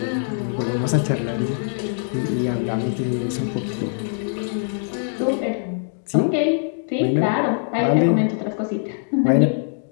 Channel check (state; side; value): silent; right; digital silence